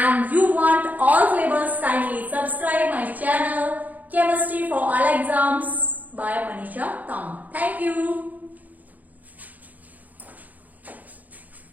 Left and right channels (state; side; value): late; left; 0.080 ms